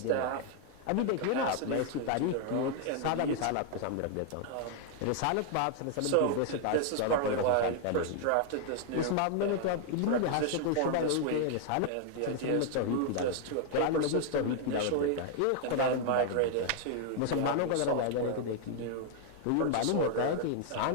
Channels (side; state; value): both; different; correlation 0.00